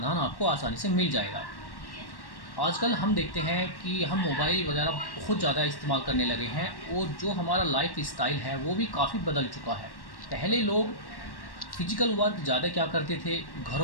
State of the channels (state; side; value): late; right; 1.1 ms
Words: आपको आसानी से मिल जाएगा। आजकल हम देखते हैं कि हम मोबाइल वगैरह बहुत ज़्यादा इस्तेमाल करने लगे हैं और जो हमारा लाइफ स्टाइल है वो भी काफ़ी बदल चुका है। पहले लोग फिजिकल वर्क ज़्यादा क्या करते थे,